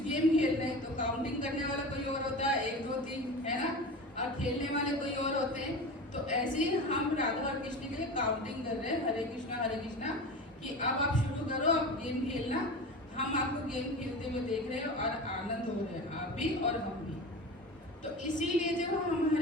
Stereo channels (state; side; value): normal; both; correlation 0.31